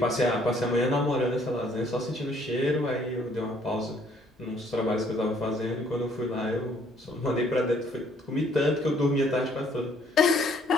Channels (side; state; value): both; normal; correlation 0.63